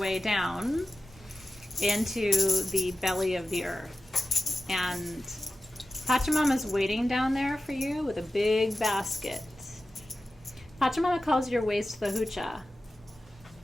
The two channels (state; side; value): normal; both; correlation 0.94